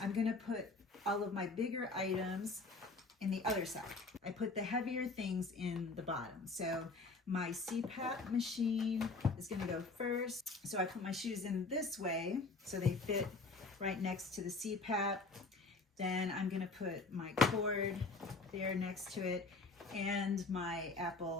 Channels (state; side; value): quieter; right; 3.8 dB